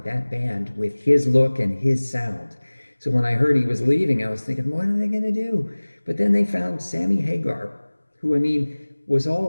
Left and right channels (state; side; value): inverted; both; correlation -1.00